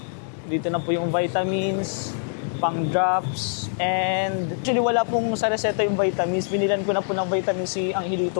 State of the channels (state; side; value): silent; right; digital silence